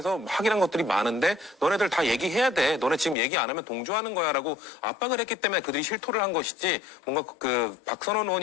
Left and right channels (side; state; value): right; drops out; at 3.2 s